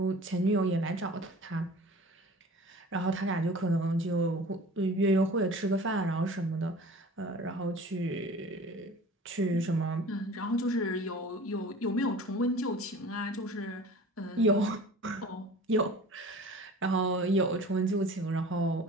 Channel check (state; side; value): normal; both; correlation 0.42